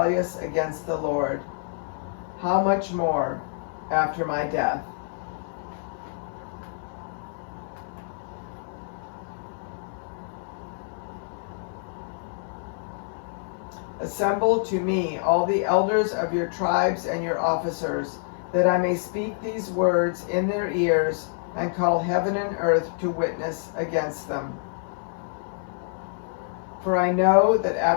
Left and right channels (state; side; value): silent; right; 57 dB below the other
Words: against the Lord. How much more after my death?" Assemble to me all the elders of your tribes and your officers, that I may speak these words in their ears and call heaven and earth to witness against them. For I know that